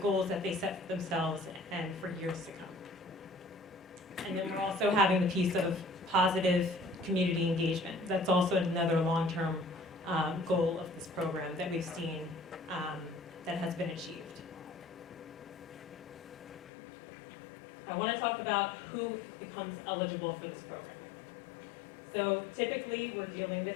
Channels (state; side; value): drops out; right; at 16.7 s